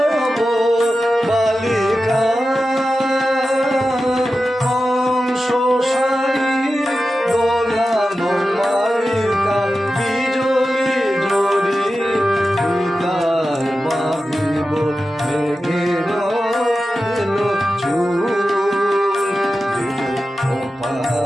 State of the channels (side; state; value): both; normal; correlation 0.93